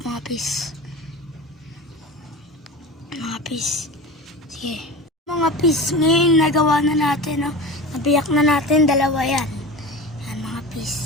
mga pis. Mga pis. Sige. Mga pis, ngayon nagawa na natin, no? Nabiyak na natin, dalawa yan. Yan mga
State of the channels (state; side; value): normal; both; correlation 0.31